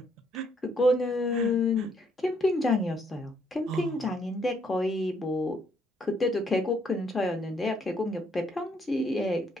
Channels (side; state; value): both; normal; correlation 0.70